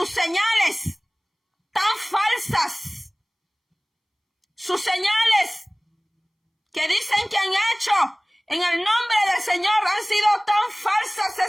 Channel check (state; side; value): identical; both; correlation 1.00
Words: señales tan falsas. Sus señales que dicen que han hecho en el nombre del Señor han sido tan falsas